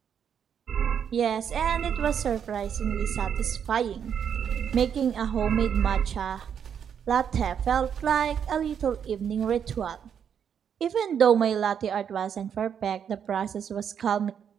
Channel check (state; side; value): quieter; left; 8.0 dB